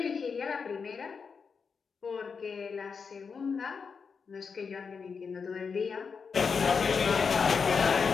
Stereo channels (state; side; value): quieter; right; 5.6 dB